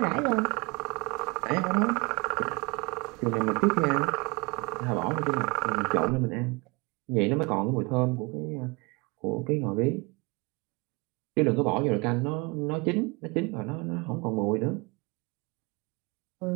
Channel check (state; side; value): quieter; left; 27.5 dB